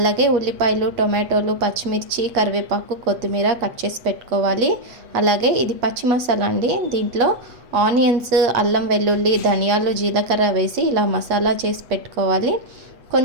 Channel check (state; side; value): late; left; 8.5 ms